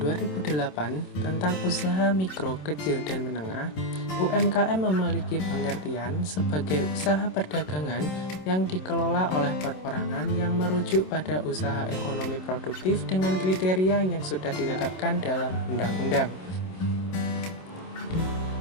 tentang usaha mikro, kecil, dan menengah, UMKM memiliki pengertian sebagai usaha perdagangan yang dikelola oleh perorangan yang merujuk pada usaha ekonomi produktif dengan kriteria yang sudah ditetapkan dalam undang-undang.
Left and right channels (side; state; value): right; late; 27 ms